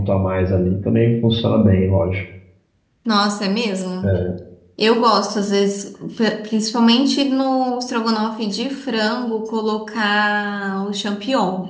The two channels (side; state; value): both; identical; correlation 1.00